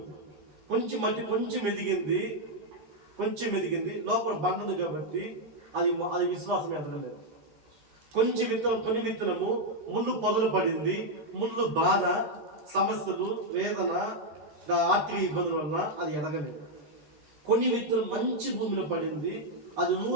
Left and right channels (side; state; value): left; late; 13 ms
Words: కొంచెం మట్టి కొంచెం ఎదిగింది, లోపల బండ ఉంది కాబట్టి అది విశ్వాసం ఎదగలేదు. కొన్ని విత్తనము ముళ్ళు పొదలు పడింది, ముళ్ళు బాధ, సమస్యలు, వేదన, ఆర్థిక ఇబ్బందుల వల్ల అది ఎదగలేదు. కొన్ని విత్తనం మంచి భూమిలో పడింది, అది